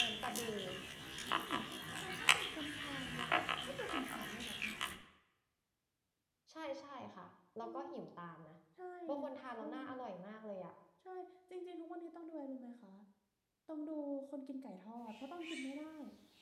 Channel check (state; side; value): identical; both; correlation 1.00